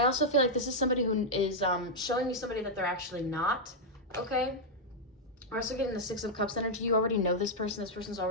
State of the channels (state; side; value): normal; both; correlation -0.03